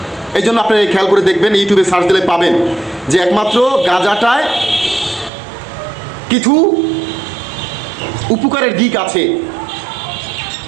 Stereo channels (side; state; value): left; drops out; at 5.3 s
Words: এই জন্য আপনারা খেয়াল করে দেখবেন, ইউটিউবে সার্চ দিলে পাবেন যে একমাত্র গাঁজাটায় কিছু উপকারের দিক আছে।